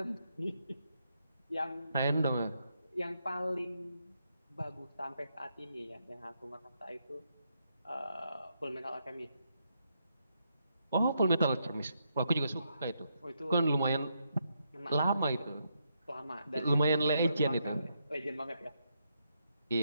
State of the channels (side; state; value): both; inverted; correlation -0.79